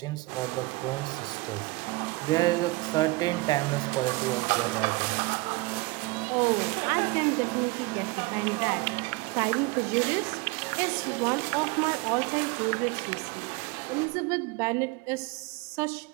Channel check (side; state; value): left; quieter; 23.6 dB